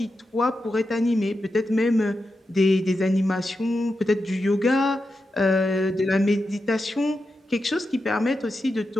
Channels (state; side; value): normal; both; correlation 0.89